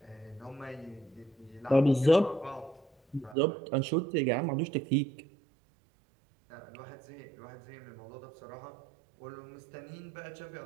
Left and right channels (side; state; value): left; drops out; at 3.4 s